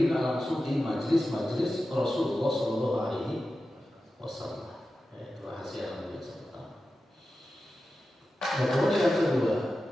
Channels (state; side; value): normal; both; correlation 0.93